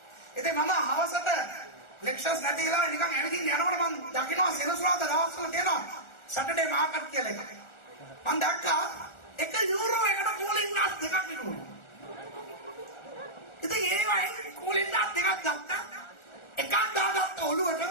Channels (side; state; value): right; late; 1.4 ms